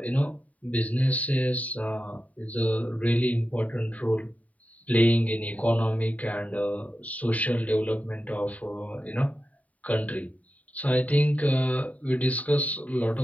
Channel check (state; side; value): late; right; 0.070 ms